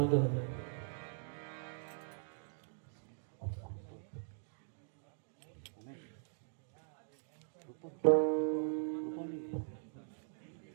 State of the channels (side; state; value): left; silent; digital silence